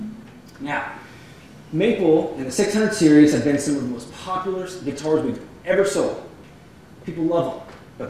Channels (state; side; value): identical; both; correlation 1.00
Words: Now, maple and the 600 series have been some of the most popular guitars we've ever sold. People love them, but